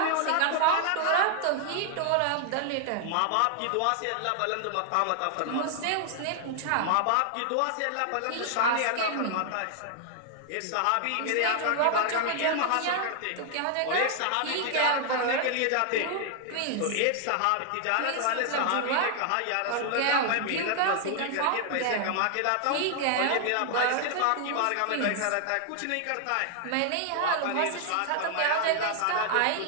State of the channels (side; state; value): both; different; correlation 0.00